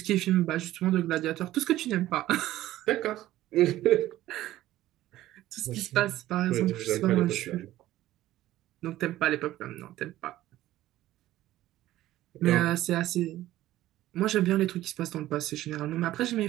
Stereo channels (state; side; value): quieter; left; 14.9 dB